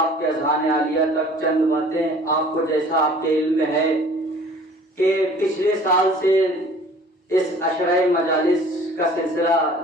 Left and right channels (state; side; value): normal; both; correlation 0.50